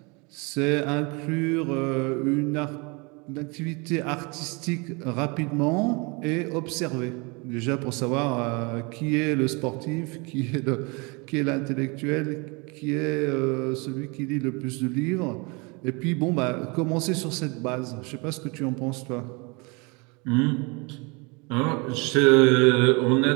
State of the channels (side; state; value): left; quieter; 29.1 dB